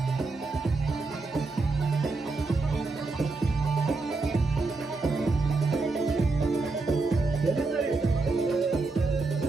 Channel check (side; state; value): left; quieter; 3.7 dB